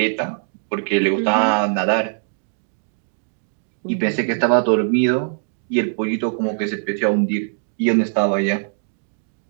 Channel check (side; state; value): left; silent; digital silence